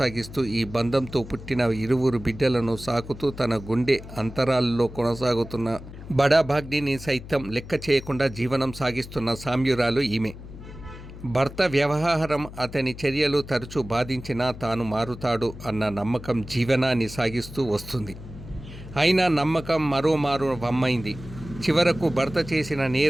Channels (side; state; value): left; noise; hum, 14 dB below the sound